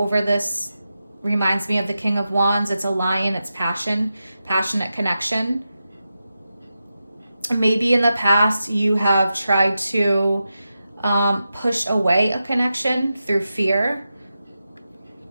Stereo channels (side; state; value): both; inverted; correlation -0.90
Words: this reminds me of the King of Wands. It's a lion. It's passion, passionate connection. Maybe in the past you have tried to push away a connection through fear.